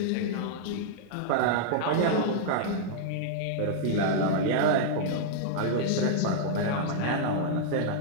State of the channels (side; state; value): both; different; correlation -0.01